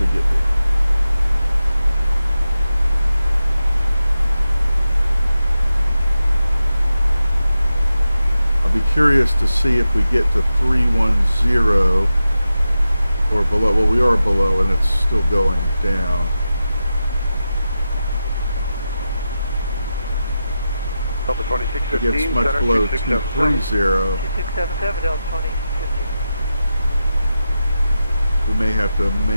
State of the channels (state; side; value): inverted; both; correlation -0.91